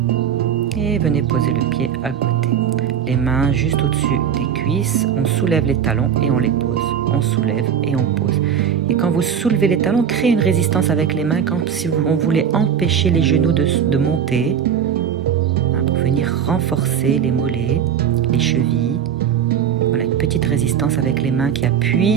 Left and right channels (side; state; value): left; quieter; 8.2 dB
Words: Et venez poser le pied à côté. Les mains juste au-dessus des cuisses, on soulève les talons et on les pose. On soulève et on pose. Et quand vous soulevez les talons, créez une résistance avec les mains, comme si on voulait empêcher les genoux de monter, pour venir renforcer les mollets, les chevilles. Voilà, une petite résistance avec les mains qui